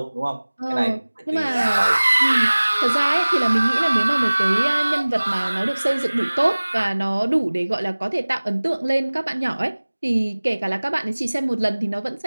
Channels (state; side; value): inverted; both; correlation -1.00